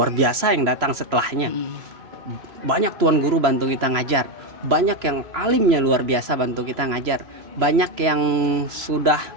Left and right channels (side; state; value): left; late; 3.0 ms